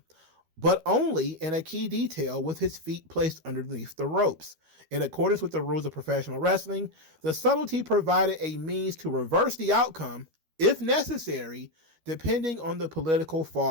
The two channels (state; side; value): late; left; 13 ms